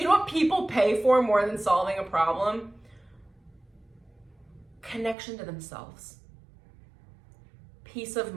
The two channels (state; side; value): drops out; left; at 5.2 s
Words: know what people pay for more than solving a problem? Connection to themselves, peace of